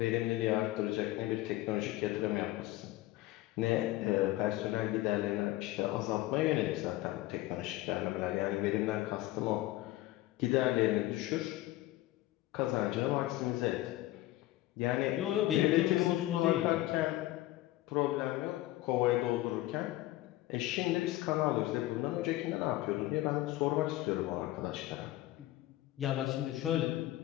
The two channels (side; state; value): right; quieter; 16.6 dB